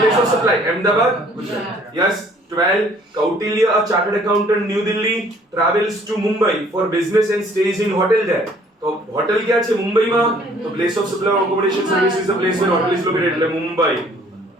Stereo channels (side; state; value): both; normal; correlation 0.58